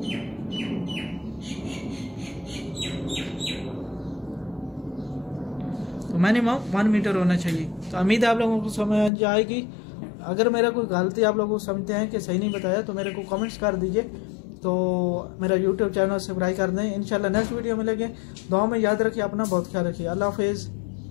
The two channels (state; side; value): drops out; right; at 9.1 s